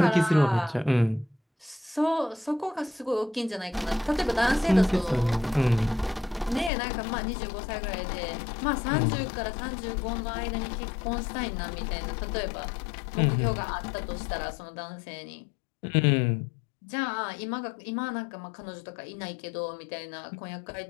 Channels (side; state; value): right; drops out; at 6.7 s